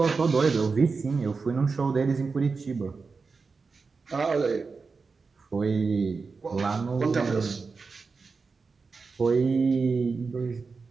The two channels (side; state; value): left; quieter; 4.6 dB